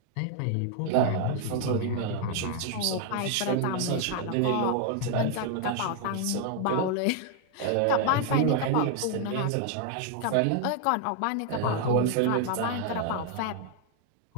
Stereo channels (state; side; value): different; both; correlation 0.00